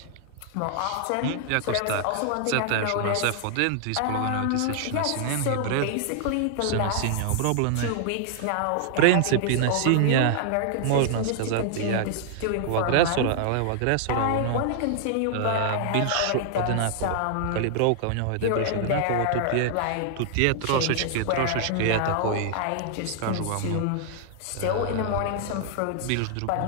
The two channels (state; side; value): different; both; correlation 0.00